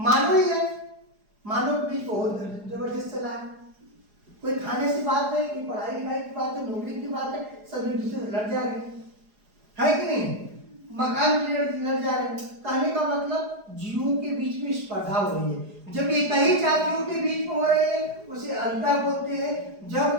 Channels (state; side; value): late; left; 4.8 ms